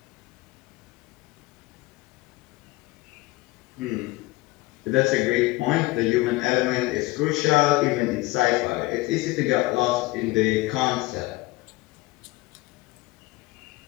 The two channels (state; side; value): quieter; right; 21.2 dB